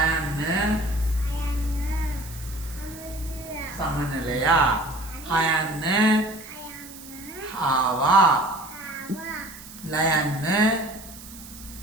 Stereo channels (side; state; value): right; noise; hiss, 16 dB below the sound